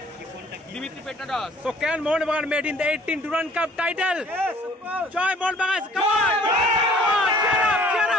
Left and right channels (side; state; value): both; normal; correlation 0.55